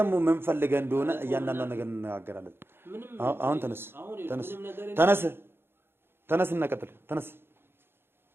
ምን ፈልገህ እንደሆነ እያንዳንዷን ነገር እንነጋገራለን። አሁን ተነስ እና ቀጥል።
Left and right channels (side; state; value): left; late; 0.11 ms